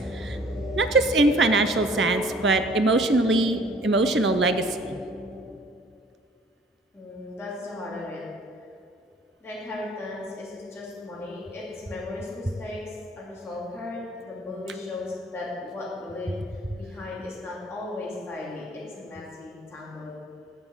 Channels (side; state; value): both; normal; correlation 0.54